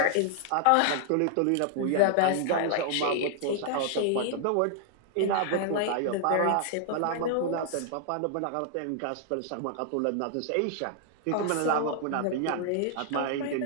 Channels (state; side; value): different; both; correlation 0.00